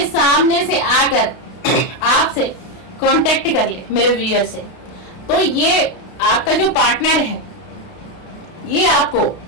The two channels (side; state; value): right; late; 32 ms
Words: सामने से आकर आपसे कांटेक्ट कर ले मेरे व्यूअर से। तो ये आपका जो पार्टनर है, ये आपको